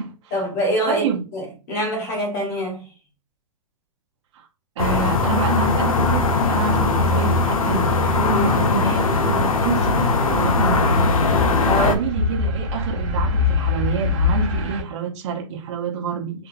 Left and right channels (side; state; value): both; normal; correlation -0.12